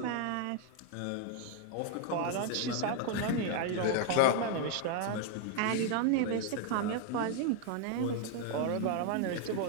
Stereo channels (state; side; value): different; both; correlation 0.00